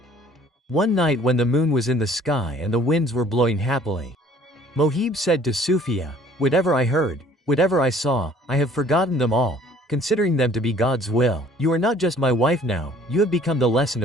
One night when the moon was in the sky and the winds were blowing happily, Mohib said to Sufia, "Whatever I heard, whatever I saw, I have forgotten them all, considering them to be God's will. You are not just my wife now, you have become the lesson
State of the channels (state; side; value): normal; both; correlation 0.55